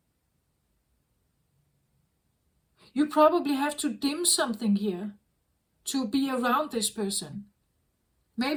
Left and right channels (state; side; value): identical; both; correlation 1.00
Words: You probably have to dim something here to be around this person.